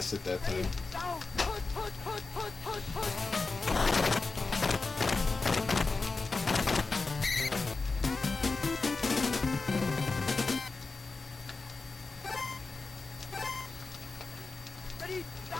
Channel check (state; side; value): quieter; right; 3.9 dB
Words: it that time.